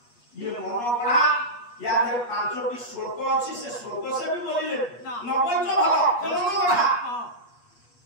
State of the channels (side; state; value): right; late; 8.4 ms